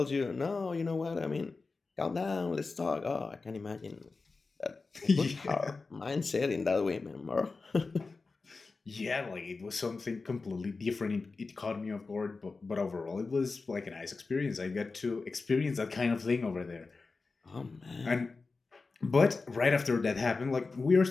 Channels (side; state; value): right; quieter; 4.0 dB